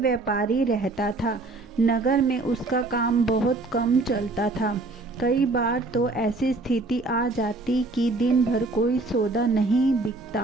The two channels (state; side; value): quieter; left; 3.2 dB